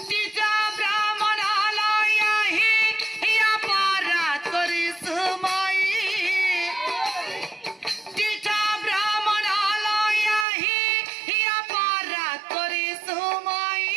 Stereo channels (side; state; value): left; drops out; at 10.5 s